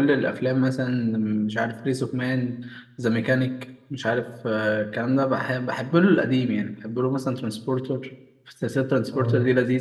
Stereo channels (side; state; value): both; identical; correlation 1.00